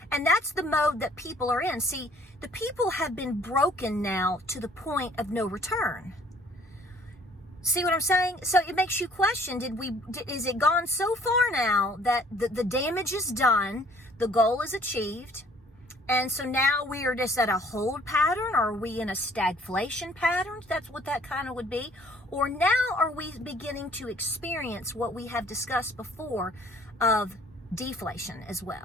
And that's the mode that people are in. See, the people have been broken now to the point of no return. See what I'm saying? So it makes you question, is it gone so far now that the damage is done, the goal is achieved, and so now we are just at a hold pattern? Or are we in a stagflation pattern? That's what that kind of would be. Or now are we beginning to experience what we have discussed before of deflation as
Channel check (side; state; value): both; normal; correlation 0.57